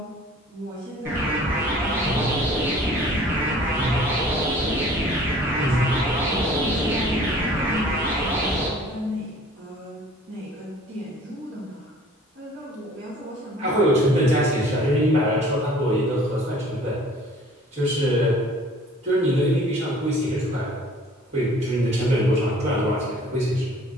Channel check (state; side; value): normal; both; correlation 0.51